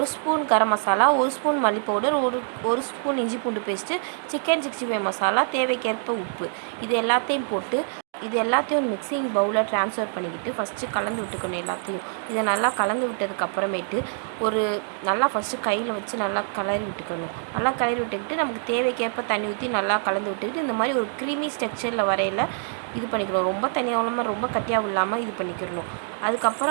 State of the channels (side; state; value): left; silent; digital silence